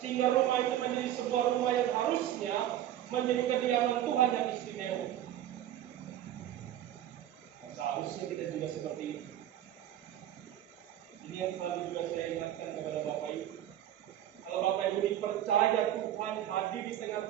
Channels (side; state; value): left; quieter; 12.0 dB